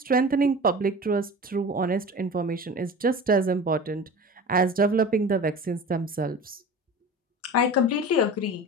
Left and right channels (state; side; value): normal; both; correlation 0.35